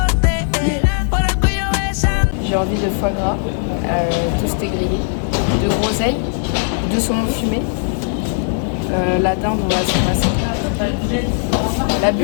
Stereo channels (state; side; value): silent; right; digital silence